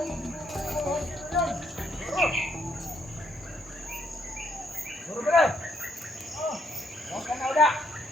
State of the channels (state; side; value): normal; both; correlation 0.71